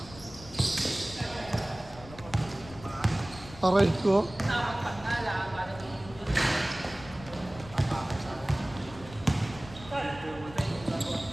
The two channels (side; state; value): left; noise; rumble, 17 dB below the sound